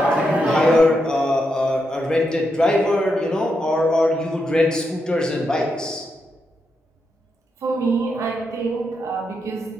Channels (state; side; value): normal; both; correlation 0.83